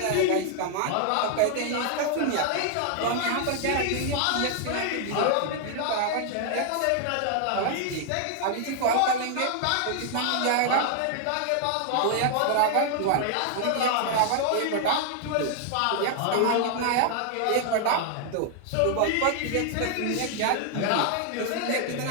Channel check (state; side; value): different; both; correlation 0.00